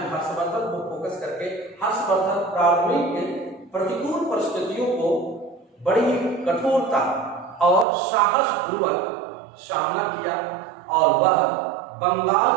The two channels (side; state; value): left; drops out; at 7.9 s